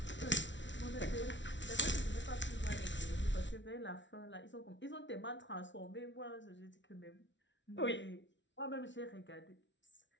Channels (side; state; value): right; late; 0.54 ms